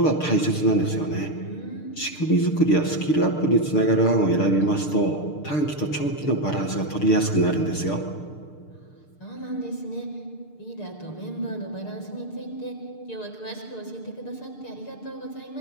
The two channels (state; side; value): late; right; 6.7 ms